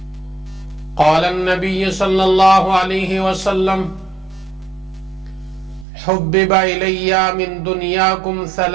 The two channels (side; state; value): left; drops out; at 5.9 s